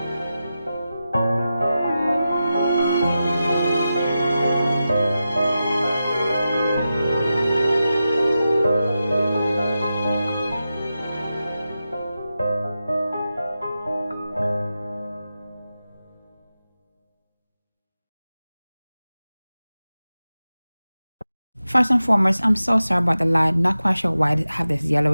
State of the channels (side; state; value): both; inverted; correlation -0.92